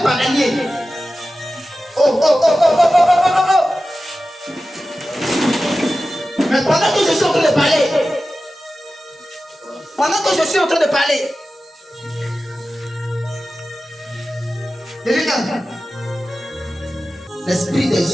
bananier. Oh, oh, oh, oh, oh, oh, oh, oh, oh. Mais pendant que je suis en train de parler, regarde, l'esprit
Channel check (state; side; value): normal; both; correlation 0.94